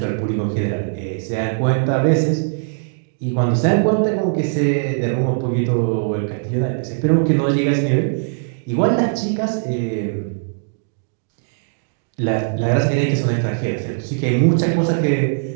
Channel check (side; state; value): left; silent; digital silence